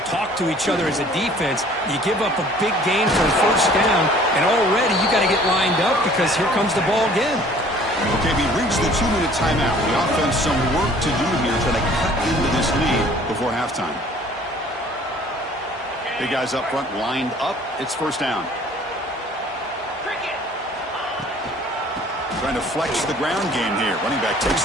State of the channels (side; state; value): both; normal; correlation 0.53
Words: talk to each other as a defense. You give up a big gain for a 1st down, and already you got to get lined up because here comes the ball again. Okay, we reached the 2-minute timeout. The offense some work to do here trying to cut into this lead before halftime. Big guys up front lined up. It's 1st down. Trying to flex the ground game here. Running back takes